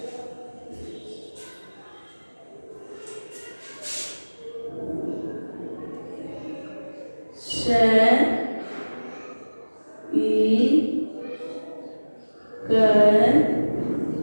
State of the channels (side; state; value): both; inverted; correlation -1.00